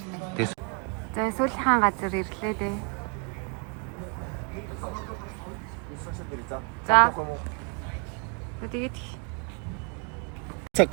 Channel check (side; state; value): left; quieter; 35.8 dB